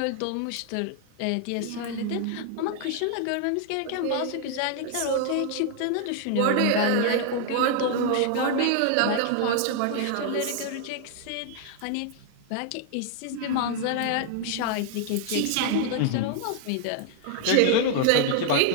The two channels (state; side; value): different; both; correlation 0.00